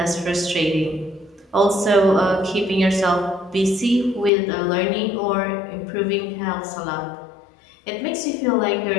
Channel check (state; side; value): drops out; right; at 4.3 s